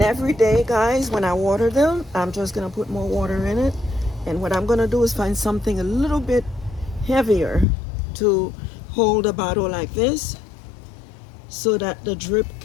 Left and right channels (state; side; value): drops out; right; at 7.7 s